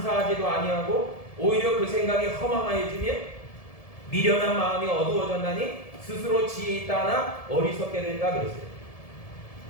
아니하고 오히려 그 생각이 허망하여지며 미련한 마음이 어두워졌나니 스스로 지혜 있다 하나 어리석게 된다 그랬어요.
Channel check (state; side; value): late; right; 1.7 ms